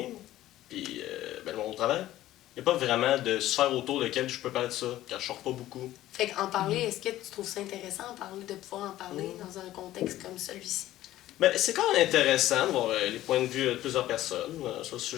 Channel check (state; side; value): quieter; right; 14.5 dB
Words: puis ben, mon travail. Il n'y a pas vraiment de sphère autour de laquelle je peux parler de ça, car je sors pas beaucoup. Fait qu'en parler, est-ce que tu trouves ça intéressant de pouvoir en parler dans un contexte comme celui-ci? Ben, c'est quand même intéressant de voir les points de vue de plusieurs personnes sur le